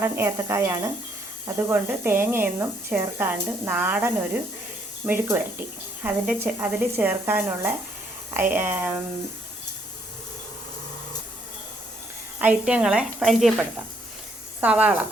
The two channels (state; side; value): normal; both; correlation 0.69